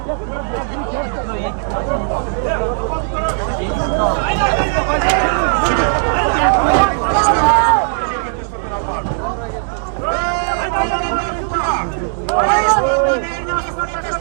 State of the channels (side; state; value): left; silent; 66 dB below the other